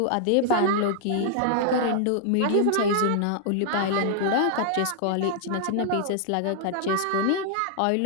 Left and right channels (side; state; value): both; different; correlation -0.01